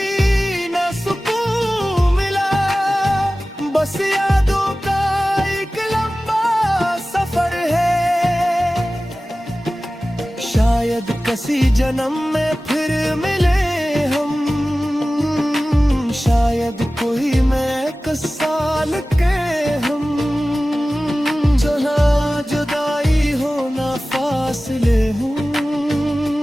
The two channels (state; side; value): normal; both; correlation 0.96